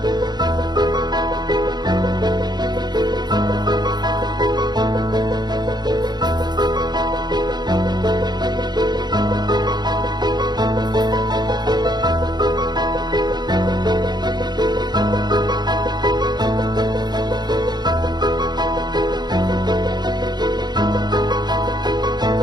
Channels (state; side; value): late; left; 0.20 ms